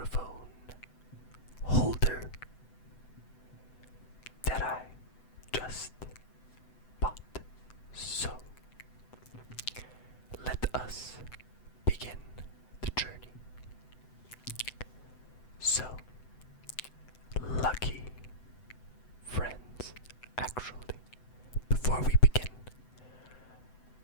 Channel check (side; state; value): right; late; 7.9 ms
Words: holder that I just bought. So, let us begin the journey. So, lucky friends, actually, before we begin,